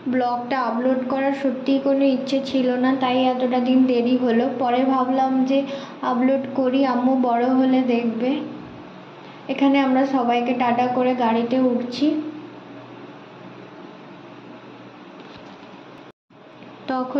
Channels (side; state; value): both; identical; correlation 1.00